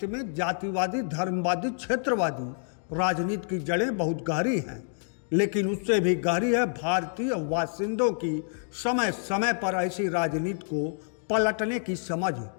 में जातिवादी, धर्मवादी, क्षेत्रवादी राजनीति की जड़ें बहुत गहरी हैं, लेकिन उससे भी गहरी है भारतीय बाशिंदों की समय समय पर ऐसी राजनीति को पलटने की समझ।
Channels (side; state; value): right; silent; 59 dB below the other